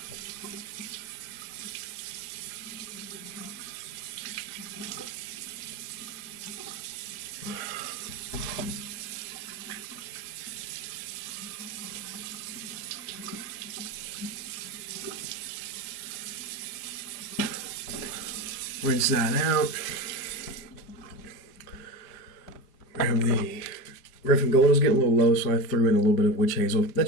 Rinse that out. Grab the Griffin Gold. Is getting a little low, so I threw in a little bit of witch hazel.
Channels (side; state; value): right; late; 5.1 ms